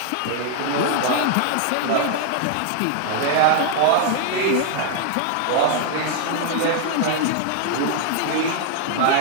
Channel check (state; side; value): different; both; correlation 0.00